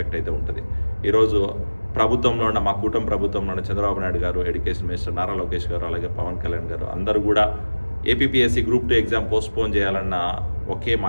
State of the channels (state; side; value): inverted; both; correlation -1.00